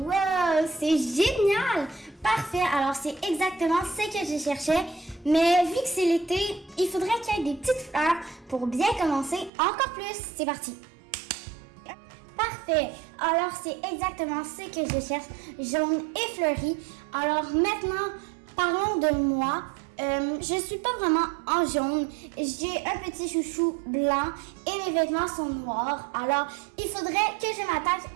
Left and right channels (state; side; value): drops out; left; at 9.5 s